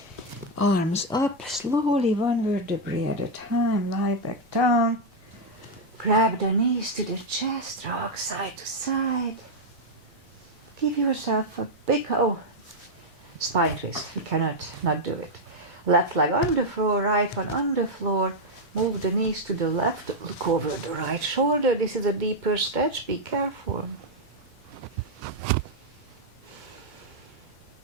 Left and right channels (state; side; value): normal; both; correlation 0.01